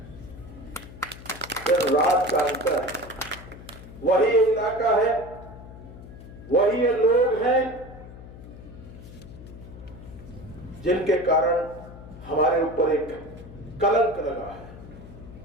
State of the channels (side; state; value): left; noise; hum, 16 dB below the sound